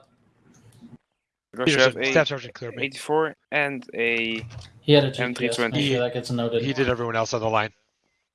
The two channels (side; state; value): both; identical; correlation 1.00